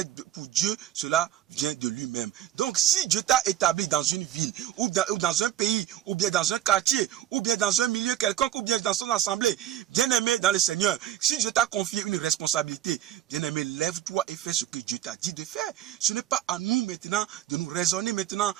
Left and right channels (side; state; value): left; quieter; 11.9 dB